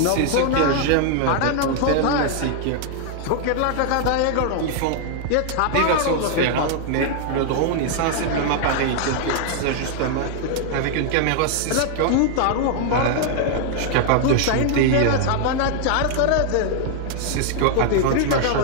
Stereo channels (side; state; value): both; different; correlation 0.00